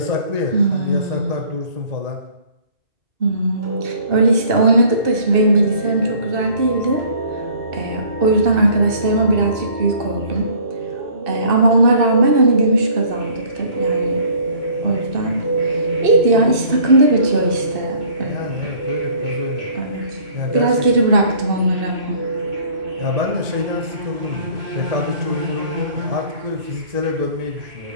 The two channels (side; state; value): left; late; 2.6 ms